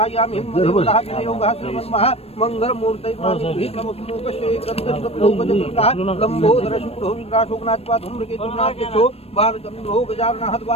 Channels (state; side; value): late; right; 0.29 ms